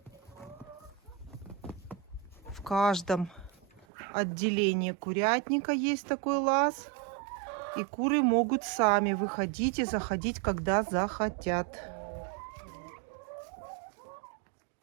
В каждом отделении курятника есть такой лаз. И куры могут сами выходить и заходить, когда захотят.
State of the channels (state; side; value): drops out; left; at 3.9 s